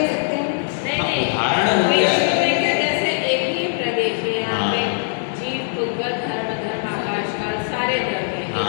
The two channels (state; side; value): silent; right; digital silence